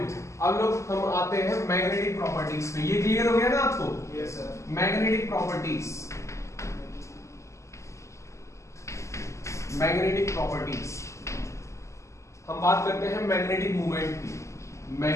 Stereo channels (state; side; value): late; right; 0.14 ms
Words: अब लोग हम आते हैं मैग्नेटिक प्रॉपर्टीज पे। ये क्लियर हो गया ना आपको? Yes sir. Magnetic properties, magnetic properties हम बात करते हैं मैग्नेटिक मूवमेंट की।